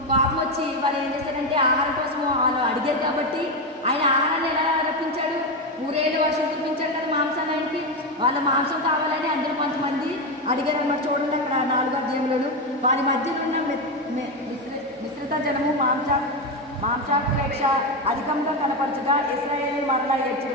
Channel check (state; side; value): normal; both; correlation 0.12